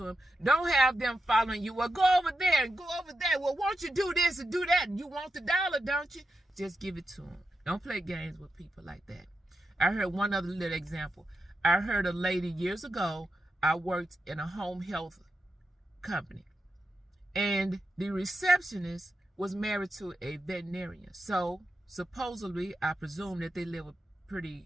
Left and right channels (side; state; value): both; normal; correlation 0.88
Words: them, don't have them following you. Well, go over there and go over there. Well, won't you do this and do that? You want the $1, don't you? Just give it to them. Don't play games with people like that. I heard one other little example. I heard a lady years ago, I worked in a home health company, and the receptionist was married to a veterinarian. So supposedly, I presume that they live a